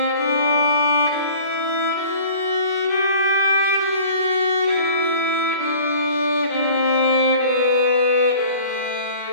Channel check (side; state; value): both; inverted; correlation -0.46